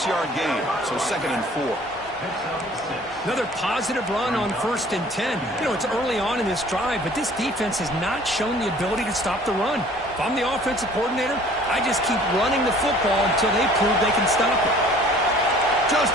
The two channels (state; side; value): normal; both; correlation 0.52